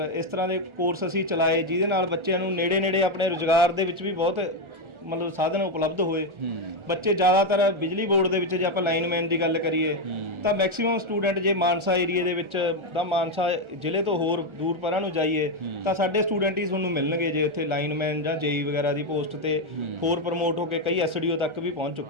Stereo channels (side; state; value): left; late; 1.4 ms